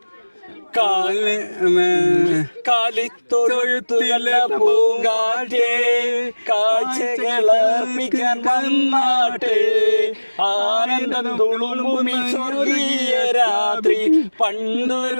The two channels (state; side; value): inverted; both; correlation -1.00